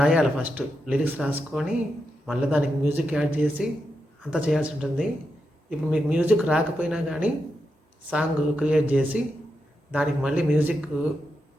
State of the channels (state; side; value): normal; both; correlation 0.86